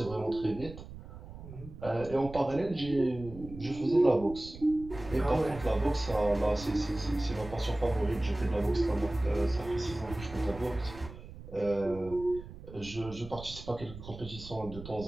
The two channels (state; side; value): noise; right; rumble, 14 dB below the sound